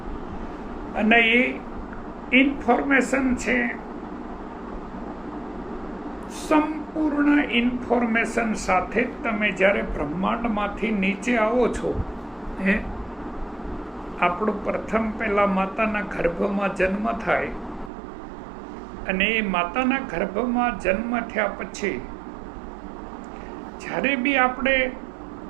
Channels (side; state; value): left; drops out; at 17.9 s